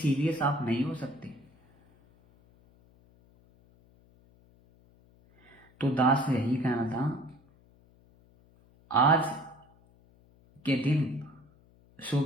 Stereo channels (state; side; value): noise; left; hum, 30 dB below the sound